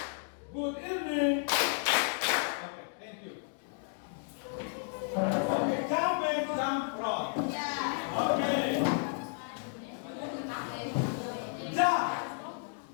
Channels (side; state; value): right; silent; 56 dB below the other